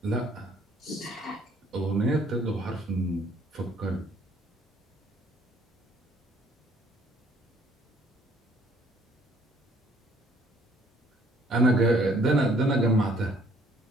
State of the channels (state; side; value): normal; both; correlation 0.61